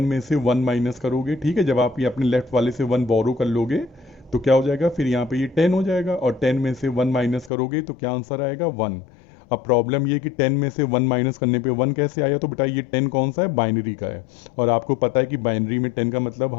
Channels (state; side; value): drops out; right; at 7.5 s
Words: में से 1 माइनस करोगे, ठीक है। जब आप ये अपने लेफ्ट वाले से 1 बोरो कर लोगे तो क्या हो जाएगा, फिर यहाँ पे ये 10 हो जाएगा, और 10 में से 1 माइनस करोगे तो क्या आंसर आएगा 1। अब प्रॉब्लम ये कि 10 में से 1 माइनस करने पे 1 कैसे आया, तो बेटा ये 10 कौन सा है, बाइनरी का है, और आपको पता है कि बाइनरी में 10 का मतलब